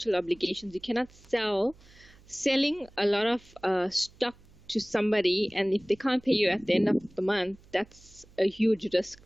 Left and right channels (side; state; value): right; noise; hum, 25 dB below the sound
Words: obligations. You cannot selling a lot of stock to somebody, and if they can't pay you at the end of the month, that's a huge risk